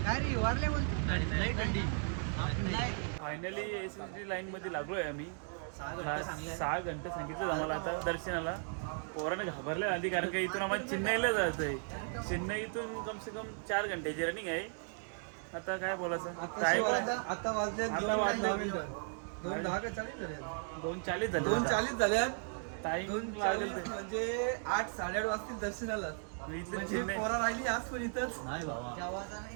काय रे? वारले बोलतो. फायनली SSD लाईन मध्ये लागलोय आम्ही. 6 घंटे सांगितलं आम्हाला आता दर्शनाला. पोराने घाबरले आधी कारण का इथून आम्हाला चेन्नईला जायचंय. चेन्नईतून कम से कम 4 घंट्याची रनिंग आहे. आता काय बोलायचं. आता वाजले 2:40 झाले. 2:40 झाल्यात. टाइम 2:40 म्हणजे 8, 8:30 वाजतील दर्शनाला. इथलं पोरा राहिली आज पण इथंच.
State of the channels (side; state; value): left; silent; 54 dB below the other